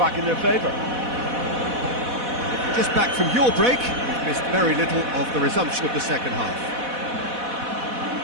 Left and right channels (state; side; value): late; left; 4.1 ms